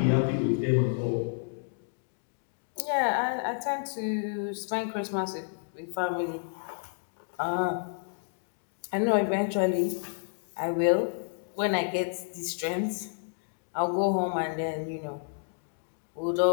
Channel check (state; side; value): silent; right; digital silence